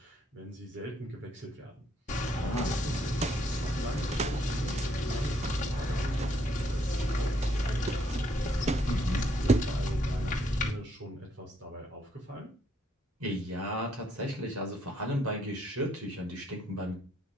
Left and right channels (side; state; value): both; normal; correlation 0.71